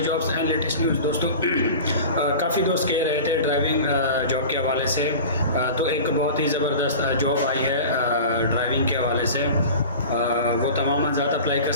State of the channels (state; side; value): inverted; both; correlation -0.36